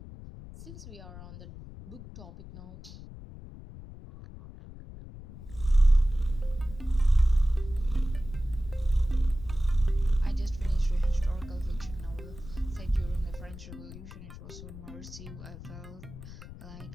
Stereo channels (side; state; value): left; noise; rumble, 14 dB below the sound